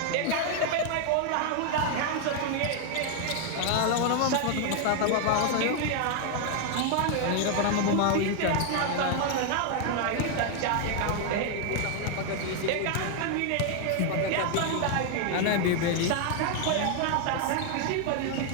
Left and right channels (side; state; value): both; different; correlation 0.00